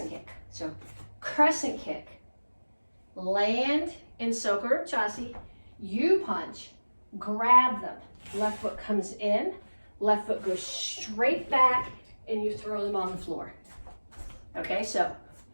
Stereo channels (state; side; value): inverted; both; correlation -1.00